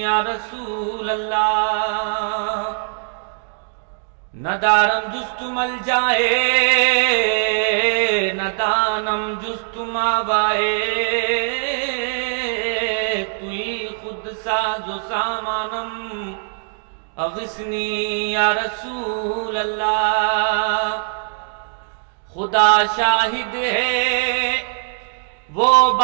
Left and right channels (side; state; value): left; silent; 65 dB below the other